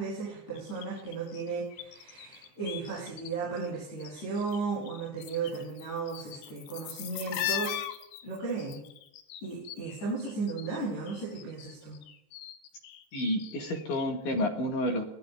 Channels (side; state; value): right; late; 14 ms